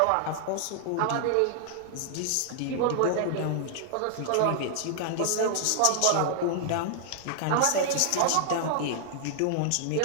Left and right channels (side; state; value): both; different; correlation -0.01